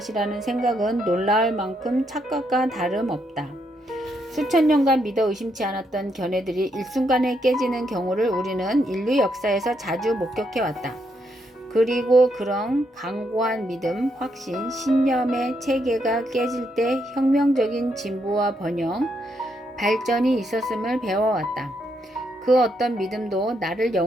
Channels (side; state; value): both; normal; correlation 0.77